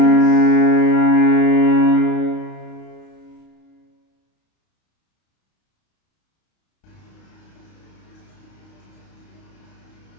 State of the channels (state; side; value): late; right; 32 ms